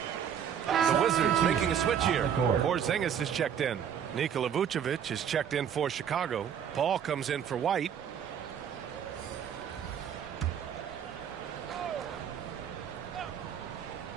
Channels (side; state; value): left; quieter; 8.5 dB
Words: The Wizards making a switch here. Porzingis is checked in. Nikola Vucevic is checked in for Chicago. Paul comes in for White.